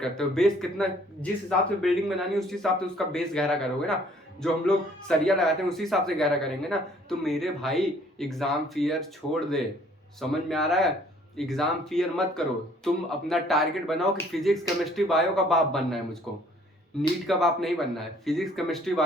करते हो बेस कितना, जिस हिसाब से बिल्डिंग बनानी है उस हिसाब से उसका बेस गहरा करोगे ना। जो हम लोग सरिया लगाते हैं उसी हिसाब से गहरा करेंगे ना। तो मेरे भाई एग्जाम फियर छोड़ दे। समझ में आ रहा है? एग्जाम फियर मत करो। तुम अपना टारगेट बनाओ कि फिजिक्स केमिस्ट्री बायो का बाप बनना है मुझको, नीट का बाप नहीं बनना है, फिजिक्स केमिस्ट्री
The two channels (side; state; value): both; normal; correlation 0.59